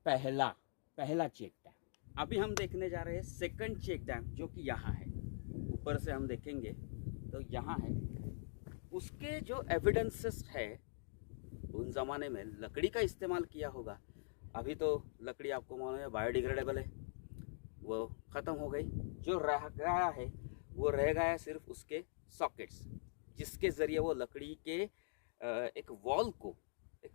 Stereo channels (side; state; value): right; silent; digital silence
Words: पहला चेक डैम। अभी हम देखने जा रहे हैं सेकंड चेक डैम, जो कि यहाँ है। ऊपर से हम देखेंगे तो यहाँ है। उसके जो एविडेंसेस है, उन ज़माने में लकड़ी का इस्तेमाल किया होगा। अभी तो लकड़ी आपको मालूम है बायोडिग्रेडेबल है, वो ख़त्म हो गई। जो रह गया है, वो रह गया सिर्फ उसके सॉकेट्स, जिसके ज़रिए वो लकड़ी के एक वॉल को